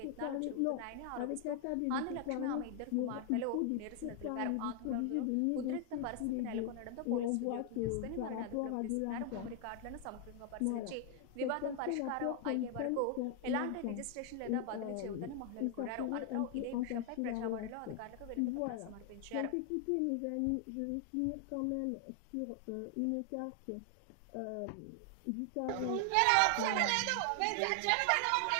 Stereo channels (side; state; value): both; different; correlation 0.00